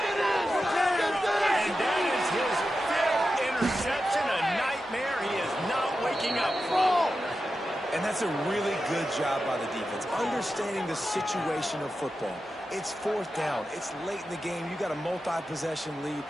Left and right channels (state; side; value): normal; both; correlation 0.91